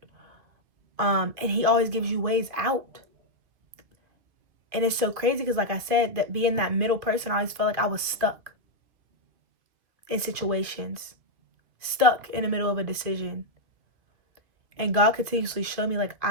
And he always gives you ways out. And it's so crazy because, like I said, that being that middle person, I always felt like I was stuck in situations, stuck in the middle of a decision. And God continuously showed me, like,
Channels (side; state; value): left; late; 2.5 ms